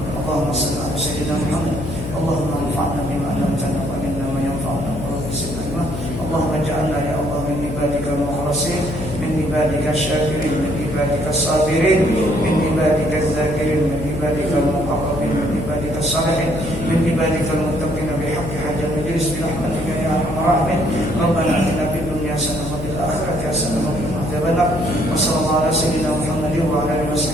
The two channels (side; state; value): left; noise; hum, 7 dB below the sound